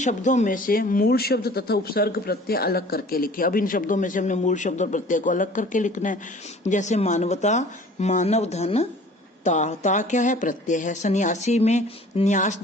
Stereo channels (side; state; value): both; normal; correlation 0.48